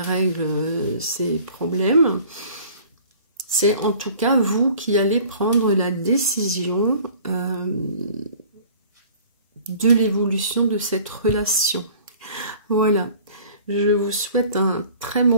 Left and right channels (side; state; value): both; inverted; correlation -0.48